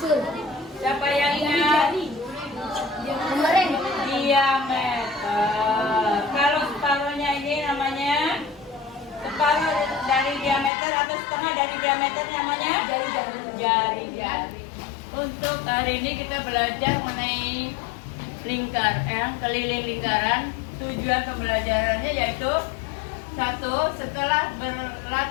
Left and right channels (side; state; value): right; drops out; at 10.7 s